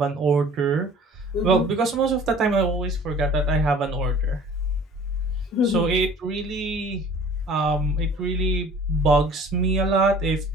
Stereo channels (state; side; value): normal; both; correlation 0.49